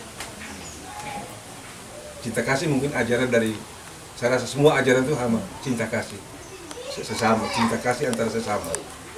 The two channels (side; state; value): both; identical; correlation 1.00